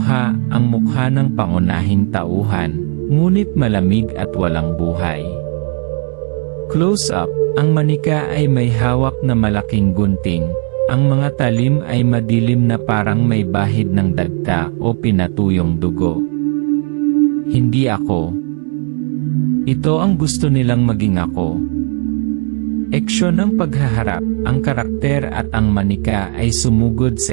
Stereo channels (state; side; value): quieter; left; 39.4 dB